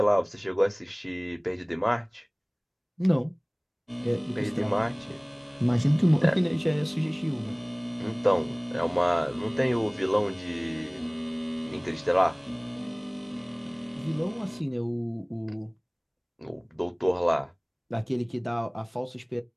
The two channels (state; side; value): identical; both; correlation 1.00